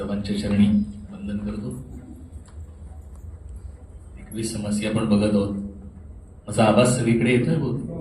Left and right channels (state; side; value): identical; both; correlation 1.00